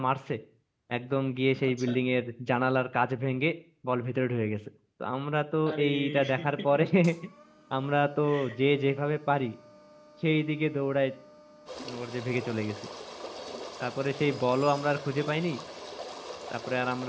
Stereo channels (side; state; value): both; identical; correlation 1.00